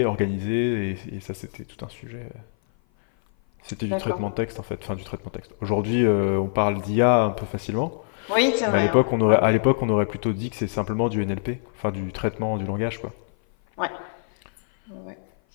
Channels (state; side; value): silent; right; 56 dB below the other